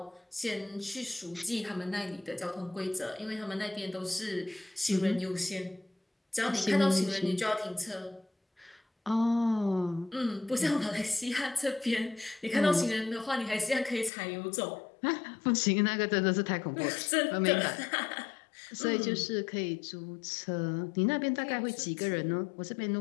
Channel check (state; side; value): drops out; right; at 14.1 s